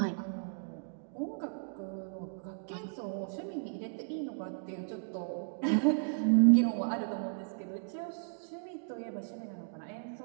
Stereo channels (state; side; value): silent; left; digital silence